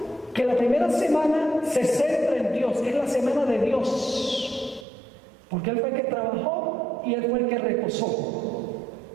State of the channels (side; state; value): left; drops out; at 4.9 s